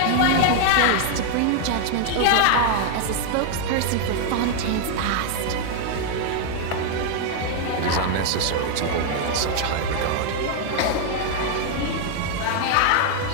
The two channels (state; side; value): different; both; correlation 0.00